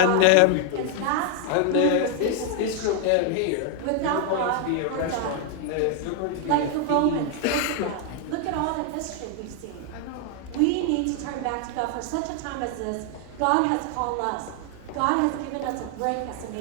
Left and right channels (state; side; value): different; both; correlation 0.00